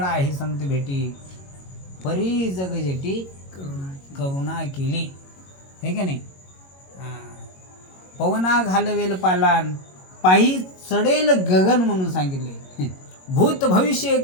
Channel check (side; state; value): right; late; 22 ms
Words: आहे संत भेटी, परी जग जेटी करुणा केली, हे का नाही? पवना घालवेल पालान, पायी चढेल गगन म्हणून सांगितले. भूत भविष्य